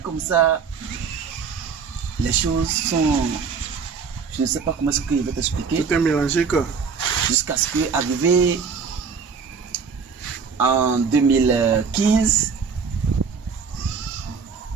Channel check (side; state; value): left; quieter; 5.7 dB